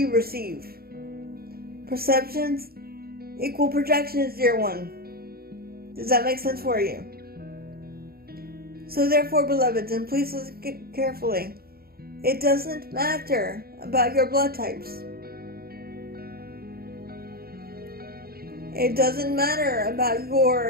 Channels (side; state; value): left; late; 0.44 ms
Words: receive. Perceptions equal projections, dear one. Does that make sense for you? So therefore, beloveds, and please listen carefully, it doesn't matter about your blood types. It doesn't matter about